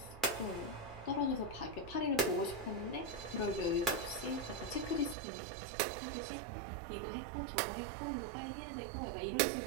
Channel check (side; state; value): left; drops out; at 5.2 s